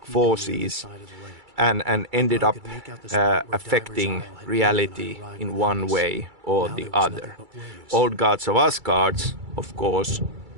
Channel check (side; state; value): left; late; 2.3 ms